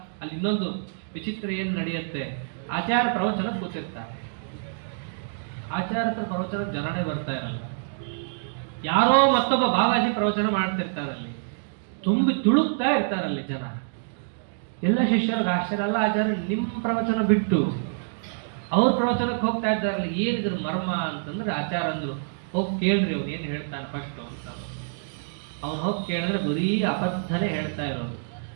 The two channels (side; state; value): left; silent; digital silence